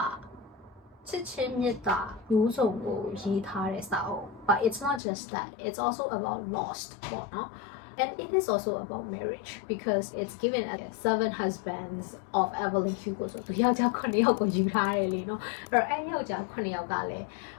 ာချစ်ချင်းမေတ္တာမျိုးစုံကိုရေးထားတဲ့စာအုပ် but it's not just that it's also about lost ပေါ့နော် and it is also about marriage because it's given as 7 husbands of Evelyn Hugo ဆိုသူယောက်ျား9ယောက်ကိုယူထားတယ်လေနော်အဲ့တော့အဲ့ယောက်ျား9ယောက်ကလည်း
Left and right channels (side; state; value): right; drops out; at 5.0 s